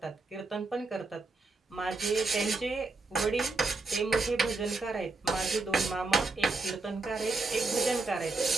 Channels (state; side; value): quieter; left; 3.6 dB